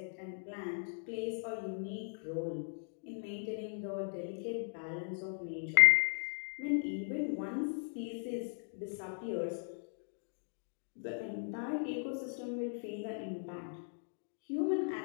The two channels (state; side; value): silent; right; digital silence